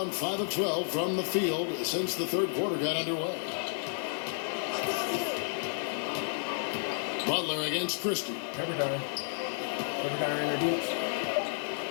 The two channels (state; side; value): silent; right; 57 dB below the other